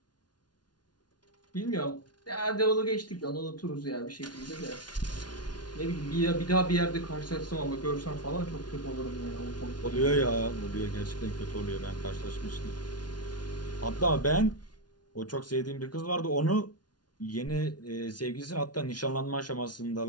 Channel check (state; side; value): late; right; 0.69 ms